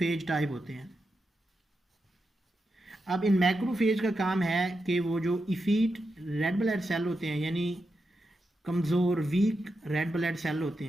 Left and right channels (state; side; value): normal; both; correlation 0.87